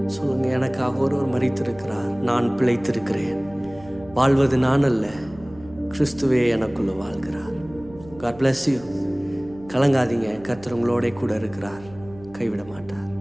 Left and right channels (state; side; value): noise; right; hum, 20 dB below the sound